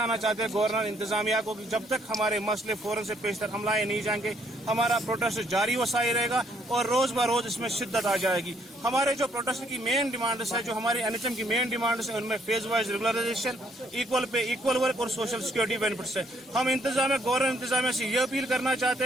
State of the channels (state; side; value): normal; both; correlation 0.68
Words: चाहते हैं गवर्नर इंतजामिया को कि जब तक हमारे मसले फौरन से पेश तक हम लाए नहीं जाएंगे, हमारा प्रोटेस्ट जारी व साई रहेगा और रोज ब रोज इसमें शिद्दत आ जाएगी। हमारे जो प्रोटेस्ट की मेन डिमांड्स है, जो हमारी NHM की मेन डिमांड्स है, उनमें phase wise regularisation, equal pay equal work और सोशल सिक्योरिटी बेनिफिट्स है। हम गवर्नर इंतजामिया से ये अपील करना चाहते